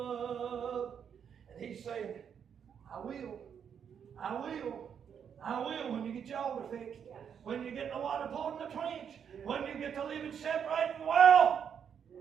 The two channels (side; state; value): left; quieter; 7.8 dB